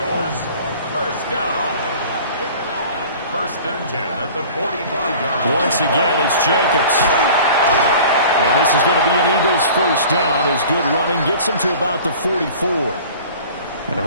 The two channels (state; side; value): inverted; both; correlation -0.44